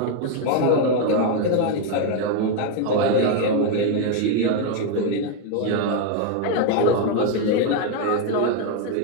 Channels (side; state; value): both; different; correlation 0.01